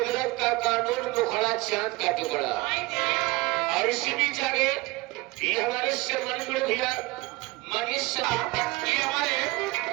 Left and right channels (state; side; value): quieter; left; 22.5 dB